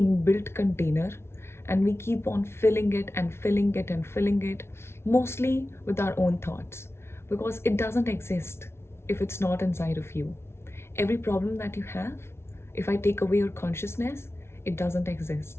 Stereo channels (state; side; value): late; right; 0.12 ms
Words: container, and we keep on filling it and filling it and filling it, mostly with our own thoughts, because it doesn't exist if it's not inside of you. Every problem that you have, if I take away your consciousness, it doesn't